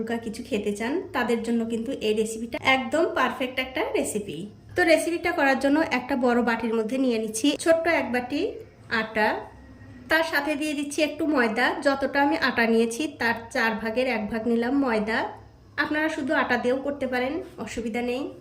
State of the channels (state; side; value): identical; both; correlation 1.00